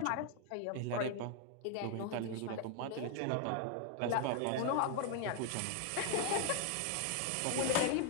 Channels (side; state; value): both; different; correlation 0.00